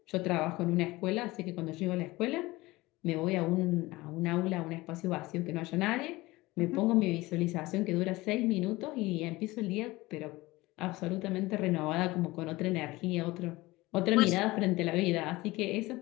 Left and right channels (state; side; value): quieter; right; 20.2 dB